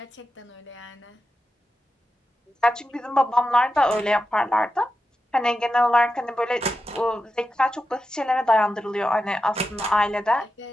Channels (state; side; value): normal; both; correlation 0.90